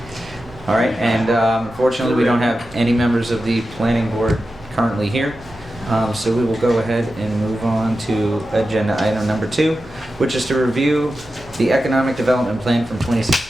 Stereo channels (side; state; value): right; noise; hum, 23 dB below the sound